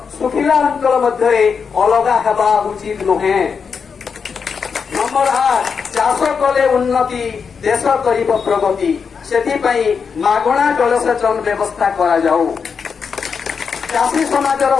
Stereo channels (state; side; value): quieter; right; 6.0 dB